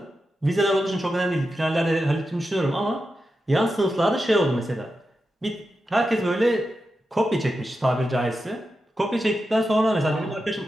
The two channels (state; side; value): normal; both; correlation 0.90